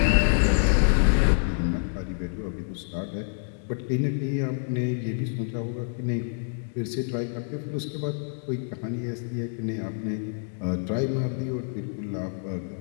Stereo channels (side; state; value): right; silent; digital silence